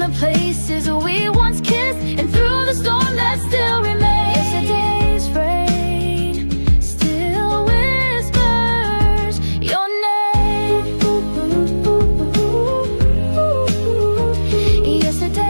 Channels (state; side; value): inverted; both; correlation -1.00